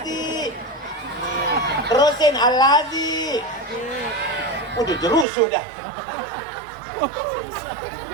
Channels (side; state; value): left; drops out; at 5.2 s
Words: Terusin Alladzi. Udah jerus sudah.